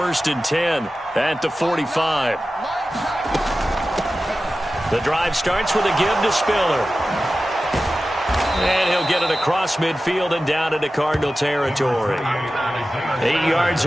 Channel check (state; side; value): normal; both; correlation 0.94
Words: and 10 at the 45. The drive starts with a give to Spiller. And he'll get it across midfield and down into Cardinal territory. 8 yards